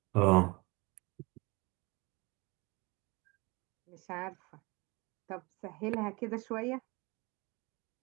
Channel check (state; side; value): quieter; left; 26.3 dB